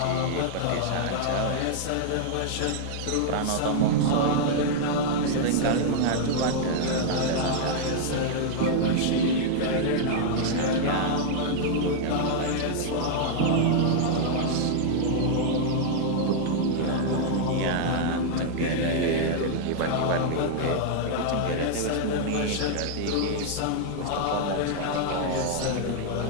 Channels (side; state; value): both; different; correlation -0.01